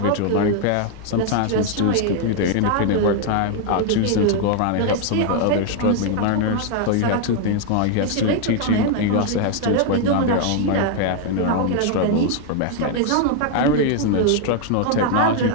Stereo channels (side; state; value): both; different; correlation 0.00